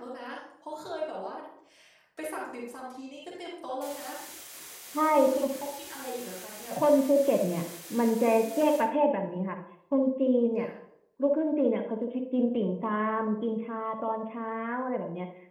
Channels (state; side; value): identical; both; correlation 1.00